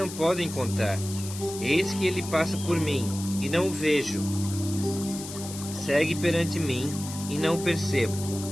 podem contar. Eis que ele passa por mim, e não o vejo. Segue perante mim, e não o percebo.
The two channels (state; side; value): noise; left; hiss, 11 dB below the sound